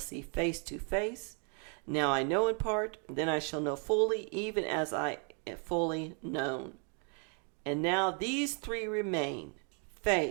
face to face. Now I know in part, then I shall know fully, even as I am fully known. And now these three remain,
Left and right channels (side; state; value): left; quieter; 39.9 dB